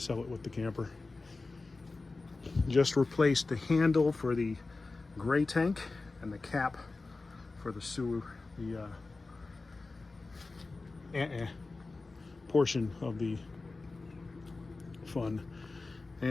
it with the camper. Just replaced the handle for the gray tank and the cap for the sewer, the portion of the fun,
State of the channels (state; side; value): quieter; right; 3.6 dB